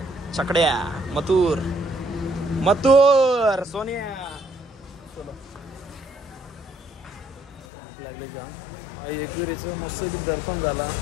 छकड्या, मथुर सोनिया. लागले जाम. आई एकविरीचं मस्त दर्शन झाला.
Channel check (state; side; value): drops out; right; at 7.7 s